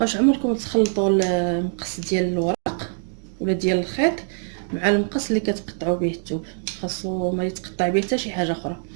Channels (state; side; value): silent; left; 63 dB below the other